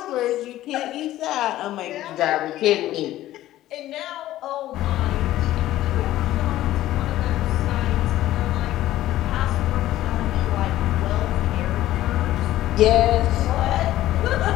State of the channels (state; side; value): quieter; right; 14.4 dB